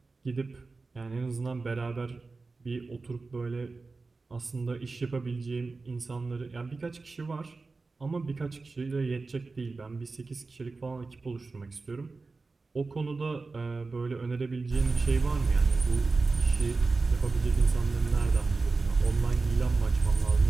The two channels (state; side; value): quieter; left; 3.9 dB